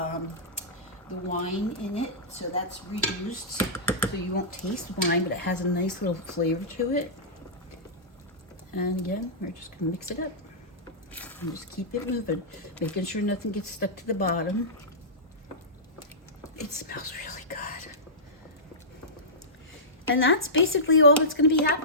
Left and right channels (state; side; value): normal; both; correlation -0.18